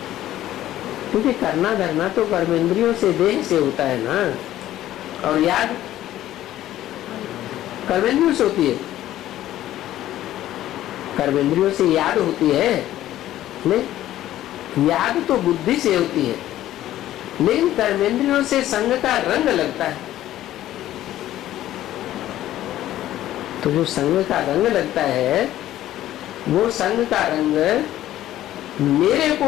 क्योंकि करना धरना तो कर्मेंद्रियों से देह से होता है ना, और याद कर्मेंद्रियों से होती है। कर्मेंद्रियों से याद होती है नहीं, याद तो बुद्धि से होती है, लेकिन कर्मेंद्रियों से संग का रंग लगता है। तो जो संग का रंग लगता है वो संग का रंग मेरे को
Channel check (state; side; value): quieter; right; 13.5 dB